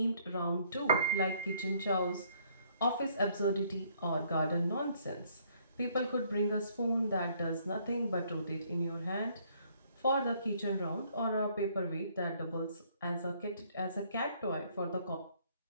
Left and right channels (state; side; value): inverted; both; correlation -0.65